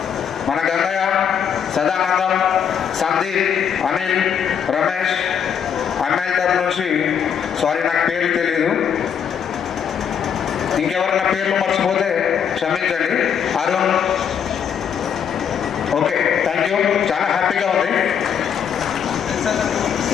మన గంగయ్య, సదానందం, సందీప్, అనిల్, రమేష్, అమ్మాయిల తరఫు నుంచి సారీ, నాకు పేర్లు తెలీదు. ఇంకెవరన్నా పేర్లు మర్చిపోతే క్షమించండి. అరుణ్. Okay, thank you. చాలా హ్యాపీగా ఉంది.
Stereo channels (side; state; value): right; quieter; 7.9 dB